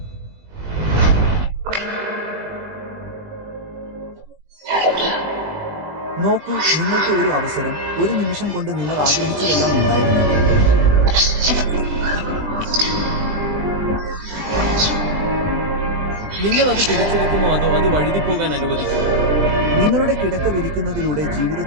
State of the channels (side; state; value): left; late; 20 ms